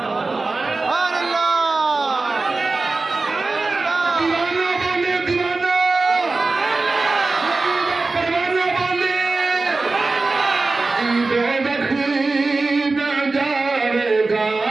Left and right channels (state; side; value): quieter; left; 3.6 dB